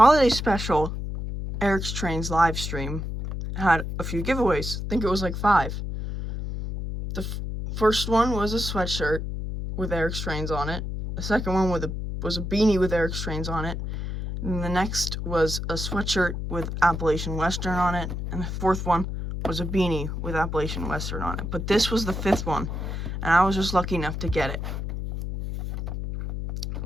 special Eric's Trains live stream had a few giveaways. I think it was like 5. The first one was a sweatshirt with Eric's Trains on it. The second one was a beanie with Eric's Trains on it. And the next was a sweatshirt with Appalachian Western on it. And the fourth one was a beanie with Appalachian Western on it. But this was the 5th one, and I was just lucky enough to get it.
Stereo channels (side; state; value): left; noise; hum, 4 dB below the sound